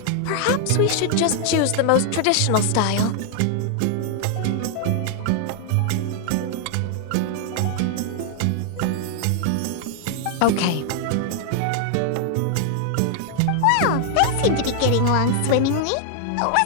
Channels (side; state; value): both; different; correlation 0.00